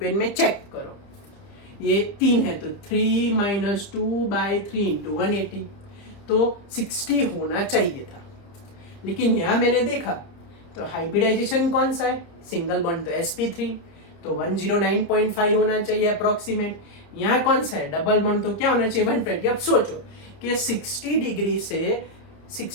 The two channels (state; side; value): late; right; 30 ms